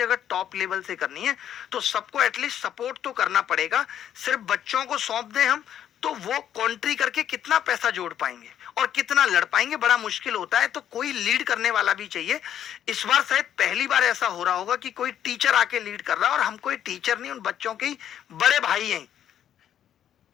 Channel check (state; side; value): quieter; right; 10.2 dB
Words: अगर टॉप लेवल से करनी है तो सबको एटलीस्ट सपोर्ट तो करना पड़ेगा। सिर्फ बच्चों को सौंप दें हम तो वो कॉन्ट्री करके कितना पैसा जोड़ पाएंगे और कितना लड़ पाएंगे, बड़ा मुश्किल होता है। तो कोई लीड करने वाला भी चाहिए। इस बार शायद पहली बार ऐसा हो रहा होगा कि कोई टीचर आके लीड कर रहा है, और हम कोई टीचर नहीं, उन बच्चों के ही बड़े भाई हैं,